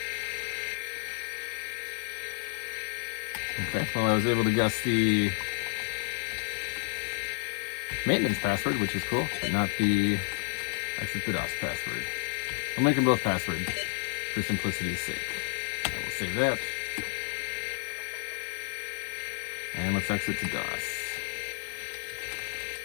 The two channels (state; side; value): silent; right; digital silence